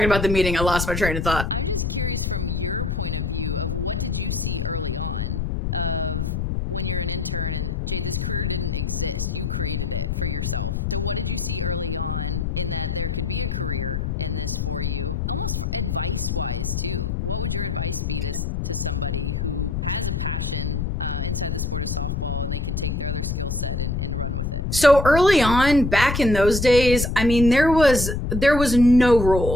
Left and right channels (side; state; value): left; noise; rumble, 1 dB below the sound